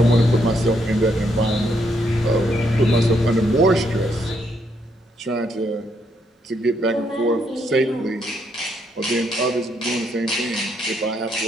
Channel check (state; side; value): normal; both; correlation 0.75